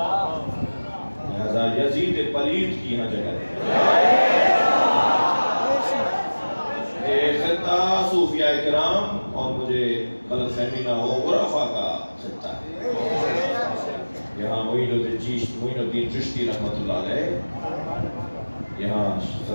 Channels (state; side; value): inverted; both; correlation -1.00